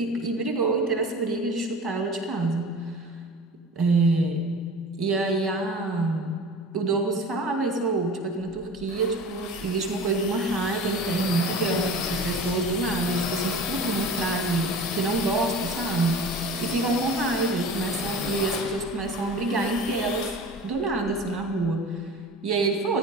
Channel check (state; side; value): normal; both; correlation 0.38